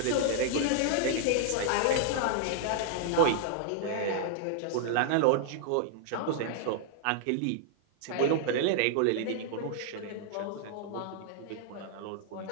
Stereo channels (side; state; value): both; different; correlation 0.00